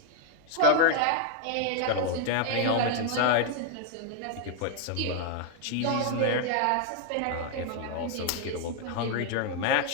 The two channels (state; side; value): different; both; correlation 0.00